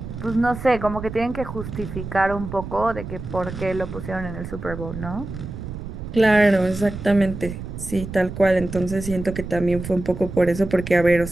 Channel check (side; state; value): right; noise; rumble, 9 dB below the sound